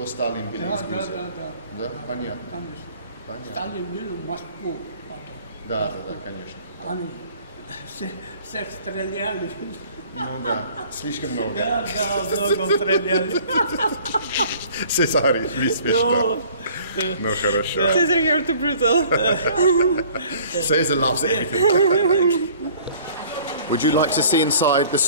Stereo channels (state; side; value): inverted; both; correlation -0.52